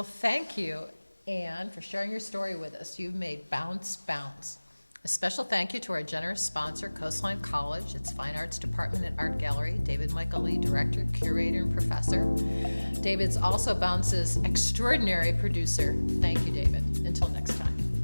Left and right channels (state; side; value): inverted; both; correlation -1.00